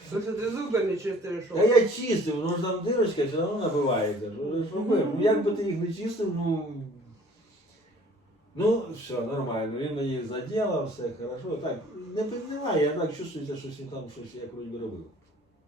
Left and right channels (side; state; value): both; normal; correlation 0.53